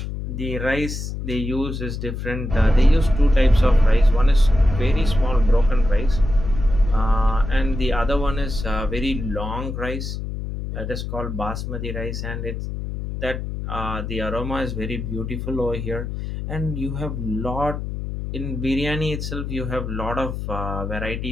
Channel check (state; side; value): noise; left; hum, 5 dB below the sound